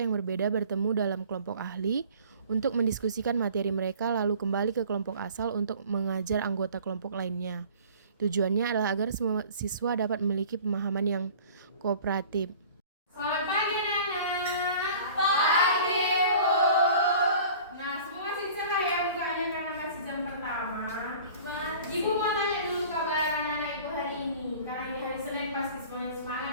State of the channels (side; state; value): both; inverted; correlation -0.46